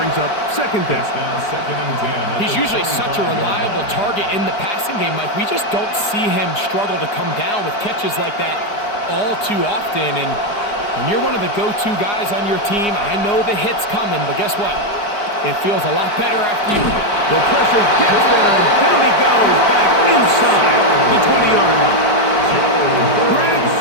up 2nd down. He's usually such a reliable target in the passing game, Mike. We just don't see him struggle to come down with catches like that all too often. And when you're one of the go-to guys on your team, I know the hit's coming, but guess what? It feels a lot better after you. The pressure gets there, and down he goes back inside the 20-yard line. Greg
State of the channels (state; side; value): late; right; 4.9 ms